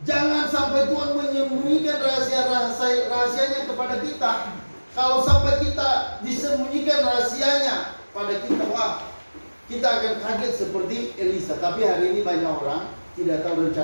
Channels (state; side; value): inverted; both; correlation -1.00